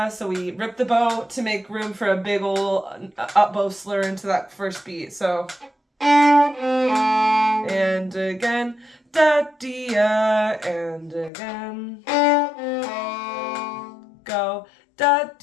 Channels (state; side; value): drops out; right; at 11.3 s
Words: So we rip the bow to make room for a big ol' up bow slur into that first beat. So, and again, da, dia, and again, go, da,